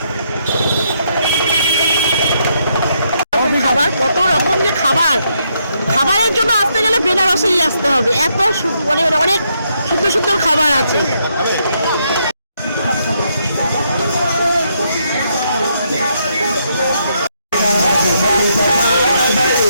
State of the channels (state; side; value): inverted; both; correlation -0.76